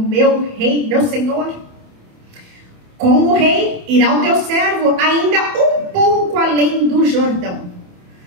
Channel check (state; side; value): late; left; 27 ms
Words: rei, meu senhor? Como o rei, irá o teu servo ainda um pouco além do Jordão,